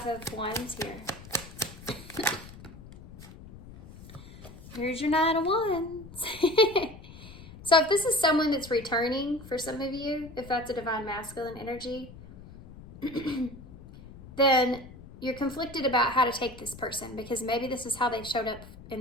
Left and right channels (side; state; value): left; noise; rumble, 17 dB below the sound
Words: of Wands here? Here's your Nine of Wands. So if this is someone that's returning for some of you, if that's a divine masculine energy, then you're conflicted about how to take this person, because maybe this is how they've showed up